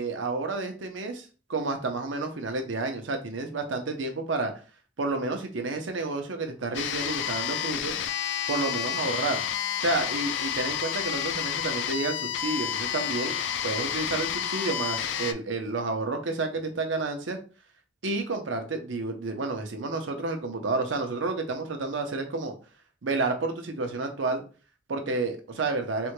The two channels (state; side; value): normal; both; correlation 0.00